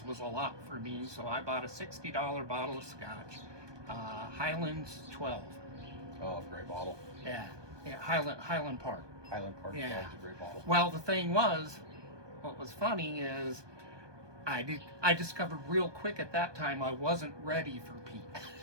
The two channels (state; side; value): late; left; 1.2 ms